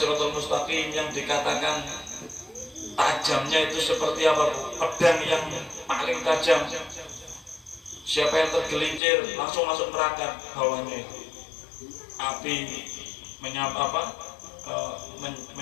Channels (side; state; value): right; drops out; at 9.0 s